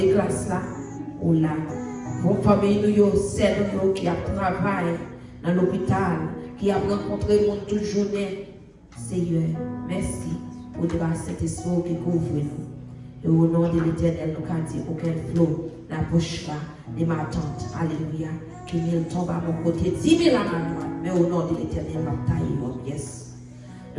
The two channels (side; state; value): both; identical; correlation 1.00